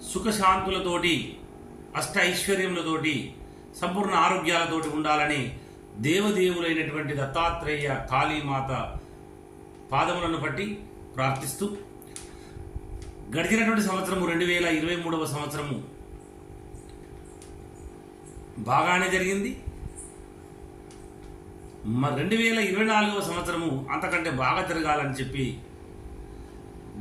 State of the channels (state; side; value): identical; both; correlation 1.00